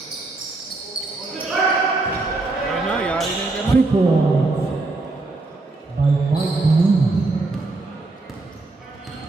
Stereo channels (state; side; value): quieter; left; 3.3 dB